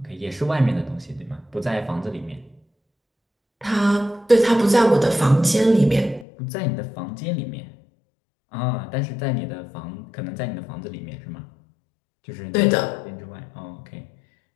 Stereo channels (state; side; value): drops out; right; at 6.2 s